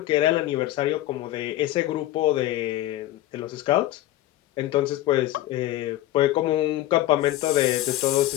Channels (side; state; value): right; quieter; 14.9 dB